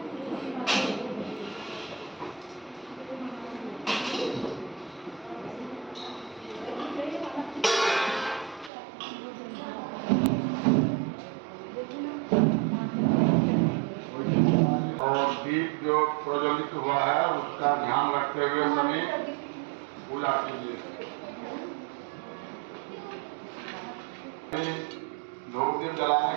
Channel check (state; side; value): drops out; left; at 8.7 s